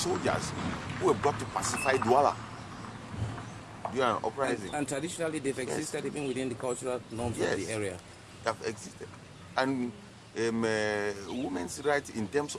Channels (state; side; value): identical; both; correlation 1.00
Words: who were brought to pacify Douala during an uprising. And traditionally, they've existed even within the cultural norms of the area. They have existed. And women's rights in terms